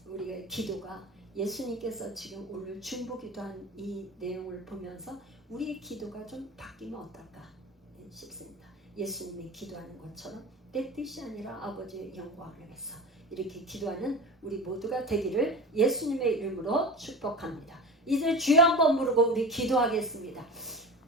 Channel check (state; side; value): normal; both; correlation 0.31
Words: 우리의 기도가, 예수님께서 지금 오늘 중보 기도한 이 내용을 보면서 우리의 기도가 좀 바뀌면 어떨까 싶습니다. 예수님이 기도하는 것처럼 내 뜻이 아니라 아버지의 영광을 위해서 이렇게 기도하는 우리 모두가 되기를 예수님의 이름으로 축복합니다. 이제 주여 한번 부르고 우리 기도하겠습니다.